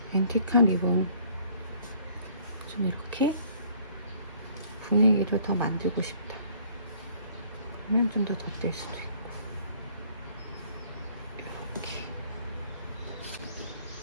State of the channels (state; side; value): inverted; both; correlation -0.59